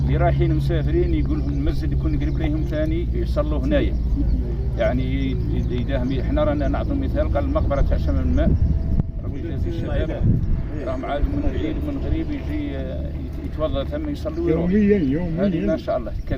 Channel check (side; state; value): both; identical; correlation 1.00